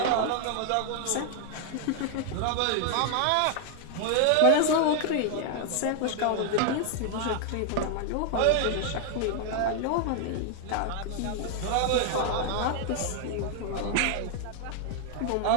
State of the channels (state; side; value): different; both; correlation 0.00